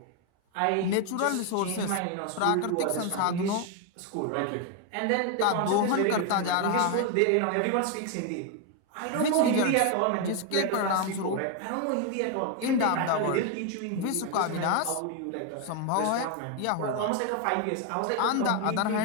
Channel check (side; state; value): both; different; correlation 0.01